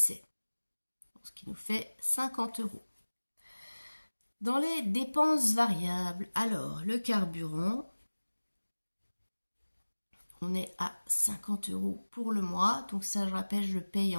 ce qui nous fait 50 €. Dans les dépenses variables, alors le carburant, on est à 50 € pour le mois. Donc ça, je rappelle, je le paye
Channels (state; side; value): inverted; both; correlation -1.00